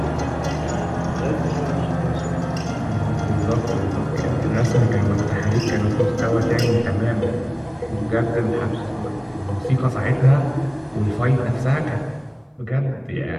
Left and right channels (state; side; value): identical; both; correlation 1.00